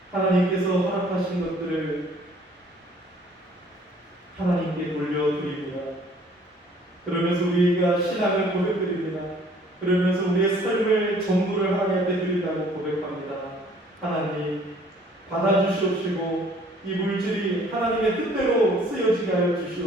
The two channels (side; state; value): both; normal; correlation 0.57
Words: 하나님께서 허락하신 것들을 하나님께 돌려드립니다. 그러면서 우리가 신앙을 고백드립니다. 그러면서 우리의 삶을 전부를 하나님 앞에 드린다고 고백합니다. 하나님 받아주시옵시고 이 물질이 하나님의 뜻대로 쓰여지게 하여